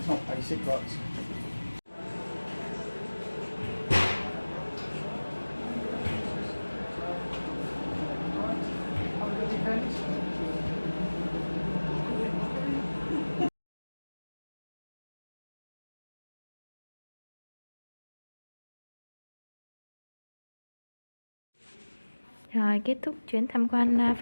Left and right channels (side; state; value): both; inverted; correlation -1.00